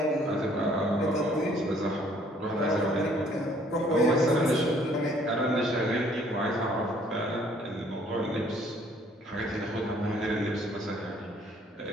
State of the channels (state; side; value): normal; both; correlation 0.61